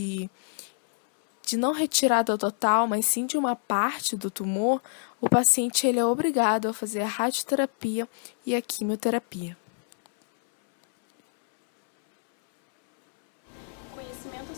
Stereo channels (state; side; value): silent; right; 61 dB below the other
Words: não retirada total, mas sim de uma parte do tumor, o paciente ele é obrigado a fazer a radioterapia e a quimioterapia. O conhecimento